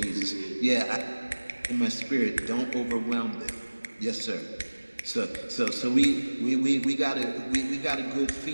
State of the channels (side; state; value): both; inverted; correlation -1.00